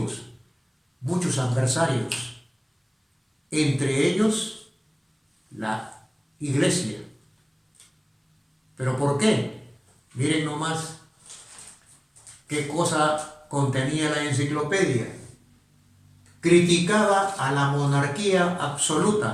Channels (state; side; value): identical; both; correlation 1.00